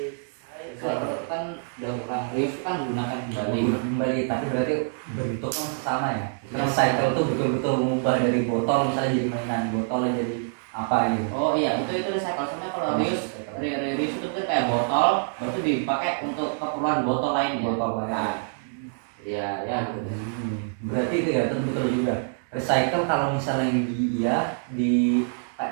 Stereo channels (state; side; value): silent; left; digital silence